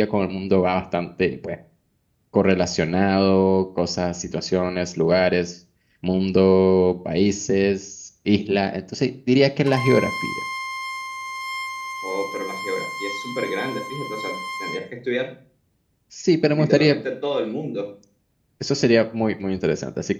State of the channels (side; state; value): both; identical; correlation 1.00